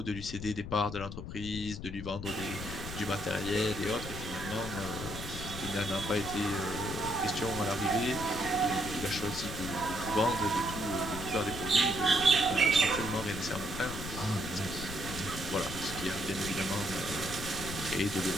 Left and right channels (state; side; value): noise; left; rumble, 8 dB below the sound